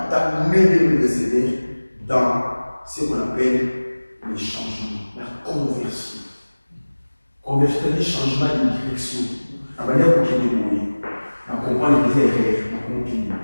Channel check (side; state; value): both; inverted; correlation -1.00